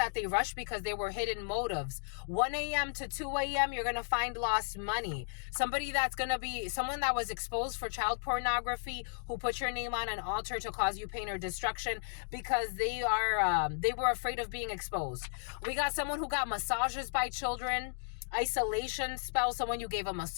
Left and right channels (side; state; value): right; silent; digital silence